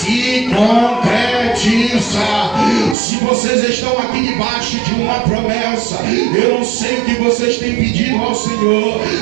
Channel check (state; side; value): drops out; left; at 3.0 s